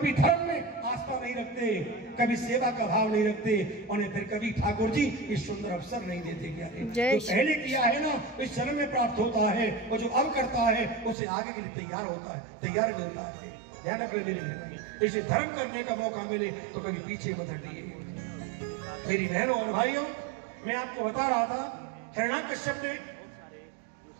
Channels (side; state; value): left; drops out; at 11.2 s